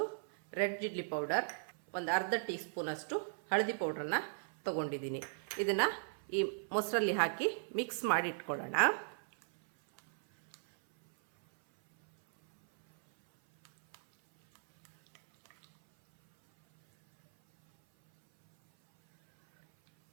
ರೆಡ್ ಚಿಲ್ಲಿ ಪೌಡರ್, ಒಂದು ಅರ್ಧ ಟೀ ಸ್ಪೂನಷ್ಟು ಹಳದಿ ಪೌಡ್ರನ್ನು ತಗೊಂಡಿದ್ದೀನಿ. ಇದನ್ನು ಈ ಮೊಸರಲ್ಲಿ ಹಾಕಿ ಮಿಕ್ಸ್ ಮಾಡಿ ಇಟ್ಕೊಳ್ಳೋಣ.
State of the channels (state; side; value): silent; left; 54 dB below the other